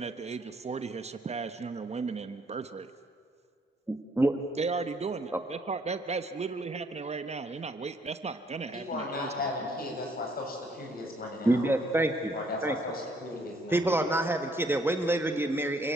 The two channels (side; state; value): both; normal; correlation 0.66